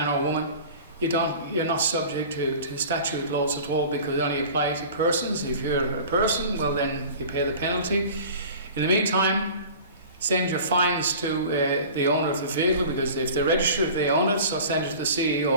or woman. You're not subject to statute laws at all, because they only apply to persons. If you're a person, well, then you pay the penalty. In the meantime, send your fines to the owner of the vehicle, because if they're registered, they own it. So send it to the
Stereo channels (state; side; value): inverted; both; correlation -0.41